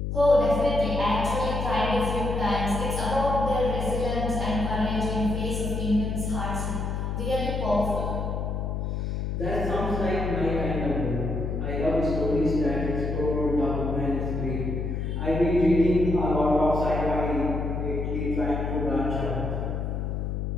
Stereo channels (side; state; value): left; noise; hum, 2 dB below the sound